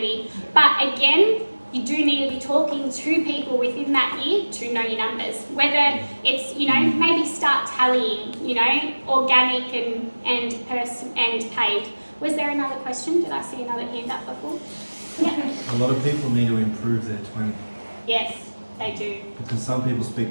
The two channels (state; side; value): inverted; both; correlation -1.00